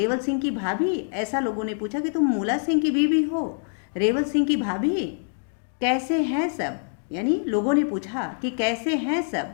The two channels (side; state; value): right; silent; digital silence